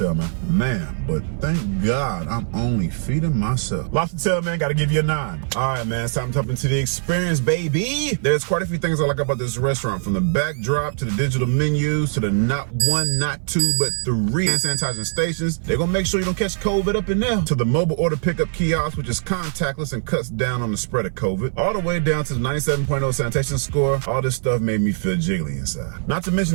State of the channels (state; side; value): silent; left; 59 dB below the other